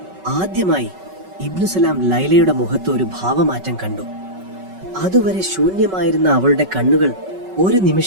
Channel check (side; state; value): left; late; 5.3 ms